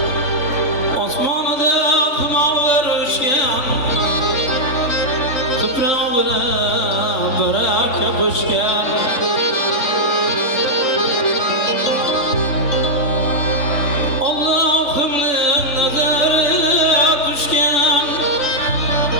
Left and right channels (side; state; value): right; late; 3.5 ms